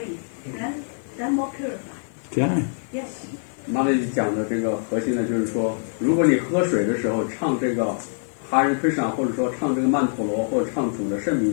Then more purified. Yeah. Yes. 那里讲的这个核心呢，就是说，如果你喝水的时候唱这个哈日 Krishna， 或者说唱这个曼陀罗，或者唱主的圣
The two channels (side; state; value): right; silent; 55 dB below the other